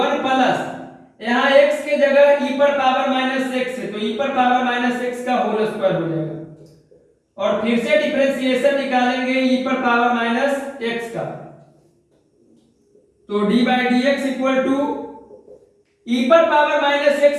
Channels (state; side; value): identical; both; correlation 1.00